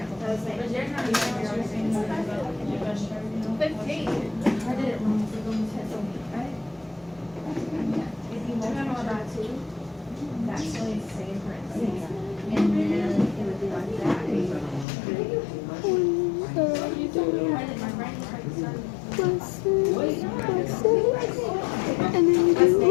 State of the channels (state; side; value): drops out; right; at 14.9 s